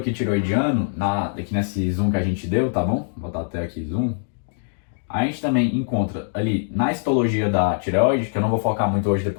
tiroidiano, aqui nesse zoom que a gente deu, tá bom? Vou botar até aqui zoom. A gente também encontra ali na histologia da tireoide, que eu não vou focar muito hoje,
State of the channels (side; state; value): right; silent; digital silence